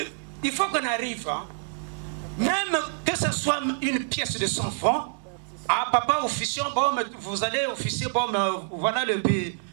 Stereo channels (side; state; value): left; silent; 60 dB below the other